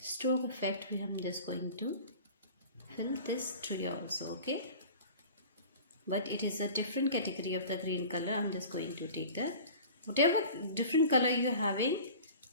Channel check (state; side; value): inverted; both; correlation -0.40